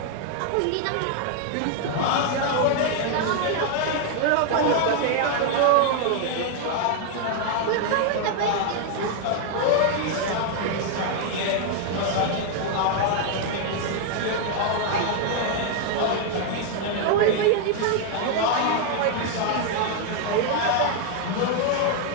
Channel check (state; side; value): different; both; correlation 0.00